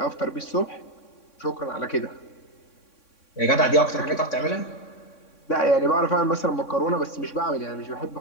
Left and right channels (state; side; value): late; right; 3.6 ms